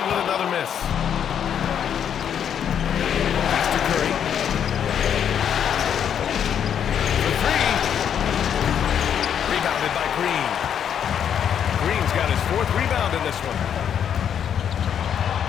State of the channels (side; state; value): right; quieter; 8.7 dB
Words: with another miss. Pass to Curry. For 3. Rebounded by Green. Green's got his 4th rebound in this one.